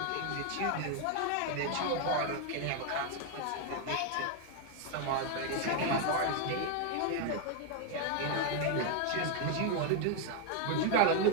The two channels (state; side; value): different; both; correlation 0.01